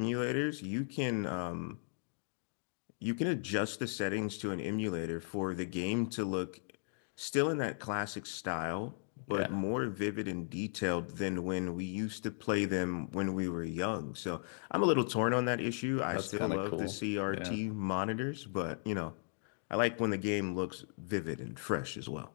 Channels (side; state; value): right; silent; digital silence